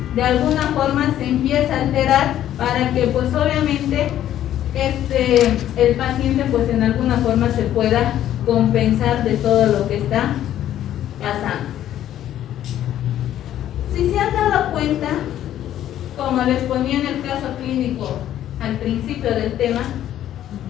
de alguna forma se empieza a alterar para que pues obviamente el paciente pues en alguna forma se pueda compensar de todo lo que está pasando. Si se han dado cuenta, como les ponía en el caso clínico al principio del tema,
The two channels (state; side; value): quieter; right; 11.8 dB